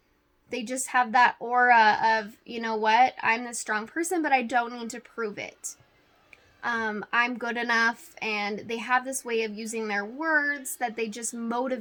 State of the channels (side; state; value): both; identical; correlation 1.00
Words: They just have that aura of, you know what, I'm this strong person, but I don't need to prove it. I'm good enough, and they have this way of using their words that they just